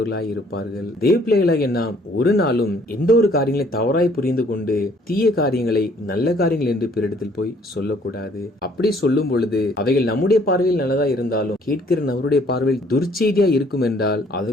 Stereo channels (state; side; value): normal; both; correlation 0.61